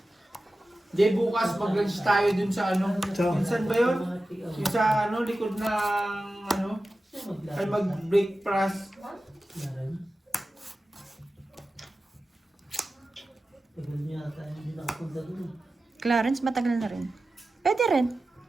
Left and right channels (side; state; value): both; normal; correlation 0.94